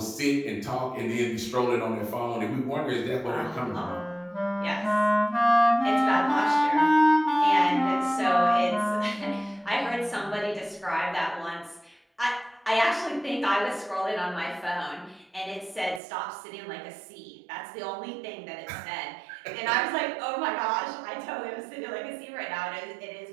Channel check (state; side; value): drops out; left; at 16.0 s